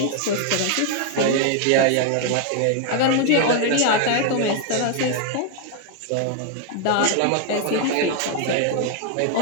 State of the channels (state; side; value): different; both; correlation 0.00